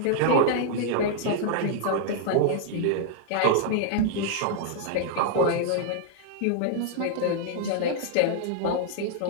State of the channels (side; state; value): both; different; correlation -0.01